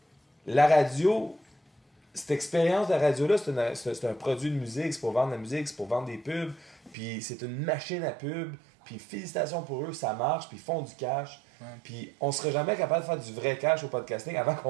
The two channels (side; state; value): left; drops out; at 7.0 s